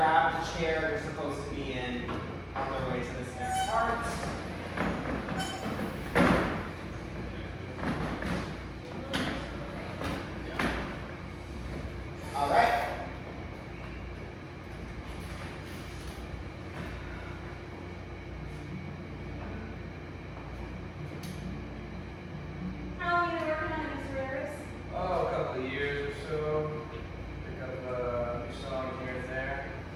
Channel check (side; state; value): both; identical; correlation 1.00